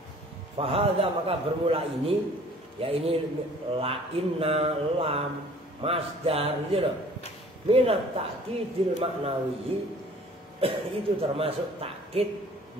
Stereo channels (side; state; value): both; normal; correlation 0.51